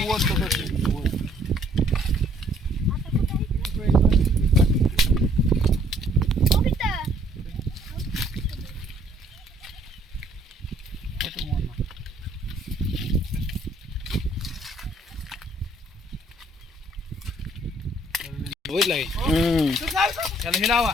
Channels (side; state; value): both; normal; correlation 0.63